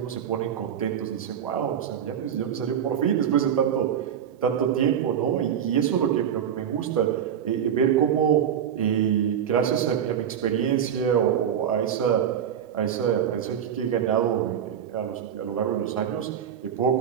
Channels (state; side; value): quieter; left; 9.0 dB